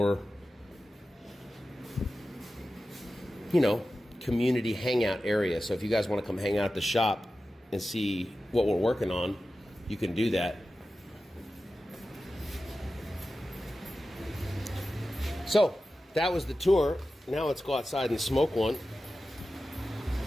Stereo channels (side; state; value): both; normal; correlation 0.94